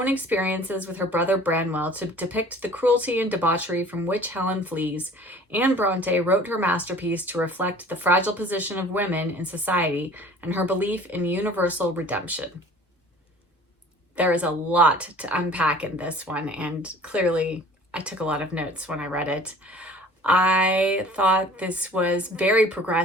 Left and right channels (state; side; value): normal; both; correlation 0.48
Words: experiences with her brother Branwell to depict the cruelty and debauchery from which Helen flees, Anne Bronte wrote her masterpiece to reflect the fragile position of women in society and her belief in universal redemption. There is a lot to unpack in this one, and clearly I took a lot of notes when I read it. I thought this was very